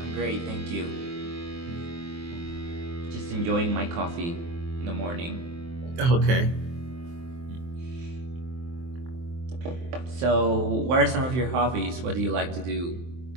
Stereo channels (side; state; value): left; late; 23 ms